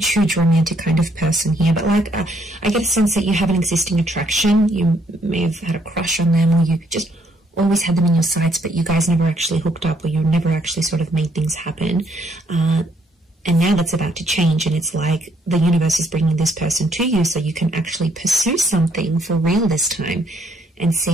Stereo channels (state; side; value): normal; both; correlation 0.69